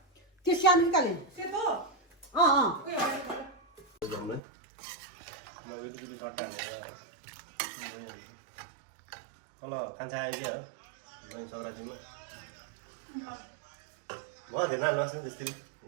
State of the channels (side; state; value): left; drops out; at 4.4 s